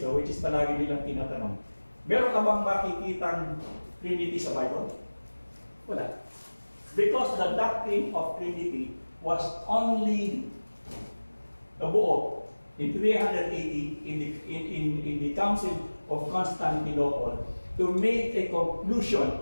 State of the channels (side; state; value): both; inverted; correlation -1.00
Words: which is palagi nilang tinatanong, meron ka bang makikitang Trinity sa Bible? Wala. Because the doctrine of Trinity was only nabuo in 380 in the Council of Constantinople to make a